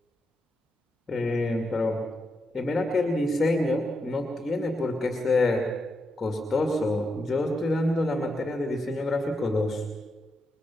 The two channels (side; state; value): both; normal; correlation 0.84